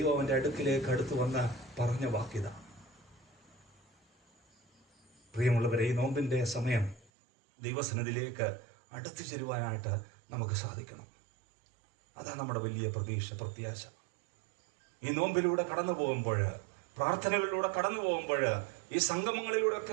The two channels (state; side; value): drops out; left; at 7.1 s